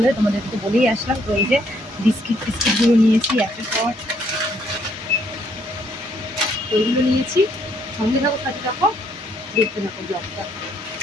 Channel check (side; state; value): both; normal; correlation 0.69